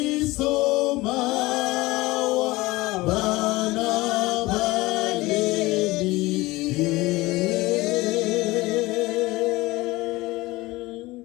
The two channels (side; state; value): right; quieter; 20.4 dB